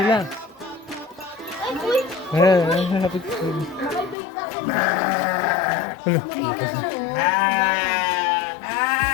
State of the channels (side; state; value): right; drops out; at 4.2 s